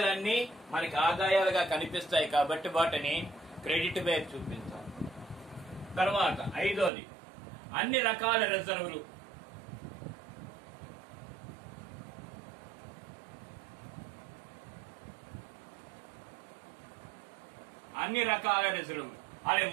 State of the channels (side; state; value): left; drops out; at 6.9 s